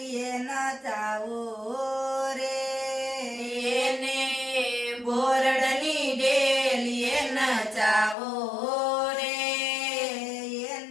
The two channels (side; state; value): right; drops out; at 8.2 s